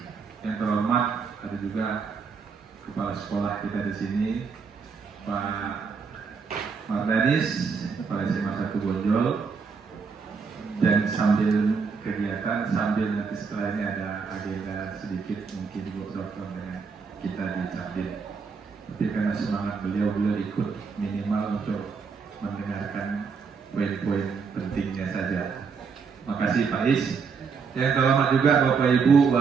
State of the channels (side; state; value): left; quieter; 5.5 dB